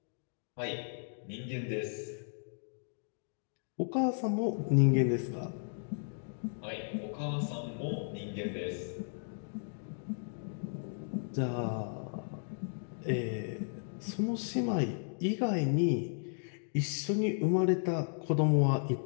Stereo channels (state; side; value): silent; right; digital silence